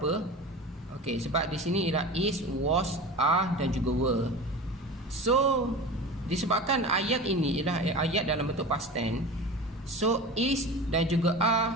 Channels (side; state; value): both; normal; correlation 0.32